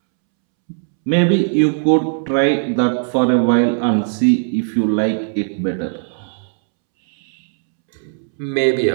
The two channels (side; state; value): left; silent; 68 dB below the other